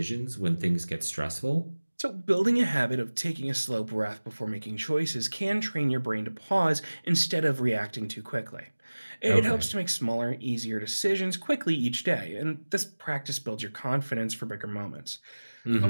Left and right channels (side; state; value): both; inverted; correlation -1.00